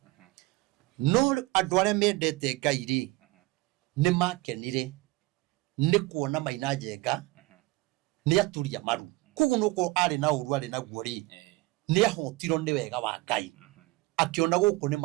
no andũ arĩa mendete Ngai rĩ nĩ makenire nĩ kuona Maina Njenga nĩ aturia maru koguo no ko arĩ na ũru arĩ naguo rĩ nĩ ahotirwo nĩ wega wa Ngai akiona gũkũ nĩ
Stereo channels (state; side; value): quieter; left; 21.1 dB